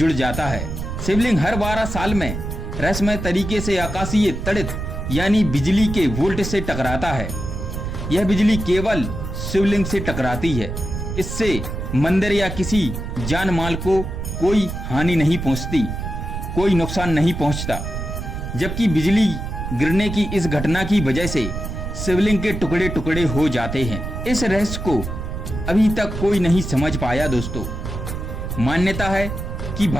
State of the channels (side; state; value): right; noise; rumble, 5 dB below the sound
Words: जाता है। शिवलिंग हर 12 साल में रहस्यमय तरीके से आकाशीय तड़ित यानी बिजली के वोल्ट से टकराता है। यह बिजली केवल शिवलिंग से टकराती है, इससे मंदिर या किसी जान माल को कोई हानि नहीं पहुंचती, कोई नुकसान नहीं पहुंचता। जबकि बिजली गिरने की इस घटना की वजह से शिवलिंग के टुकड़े टुकड़े हो जाते हैं। इस रहस्य को अभी तक कोई नहीं समझ पाया। दोस्तों, मान्यता है कि